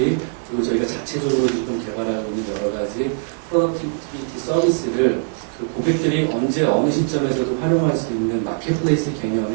그리고 저희가 자체적으로 지금 개발하고 있는 여러 가지 프로덕티비티 서비스를 그 고객들이 언제 어느 시점에서도 활용할 수 있는 마켓플레이스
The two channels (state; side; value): silent; left; digital silence